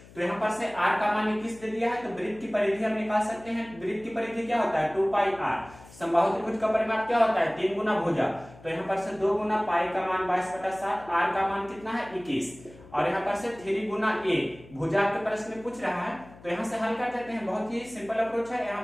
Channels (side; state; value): left; noise; hum, 21 dB below the sound